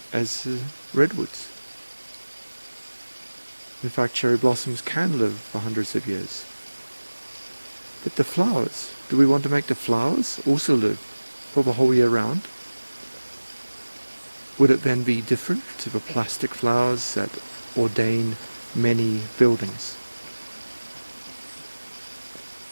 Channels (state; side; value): inverted; both; correlation -1.00